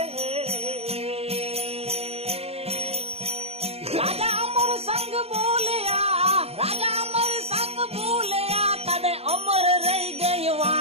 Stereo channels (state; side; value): late; left; 0.29 ms